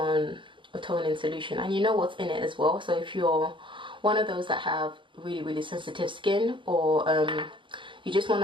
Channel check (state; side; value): late; left; 0.24 ms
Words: a toning solution. And you know what's in it as well. So if you're one of those that have really sensitive skin, or you just want